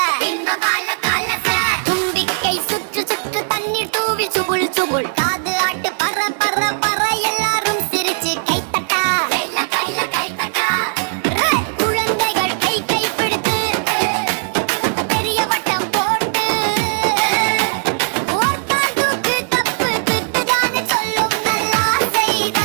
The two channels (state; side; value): silent; left; digital silence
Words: இன்பபால காலச தும்பிக்கை சுற்று சுற்று தண்ணீர் தூவி சுபுள் சுபுள் காது ஆட்டு பற பற பற எல்லாரும் சிரிச்சு கைத்தட்டா கைல கைல கைத்தட்டா குழந்தைகள் கை கை பிடித்து பெரிய வட்டம் போட்டு ஓர்கால் தூக்கு தப்பு திட்டுதானே சொல்லும் நல்லா செய்த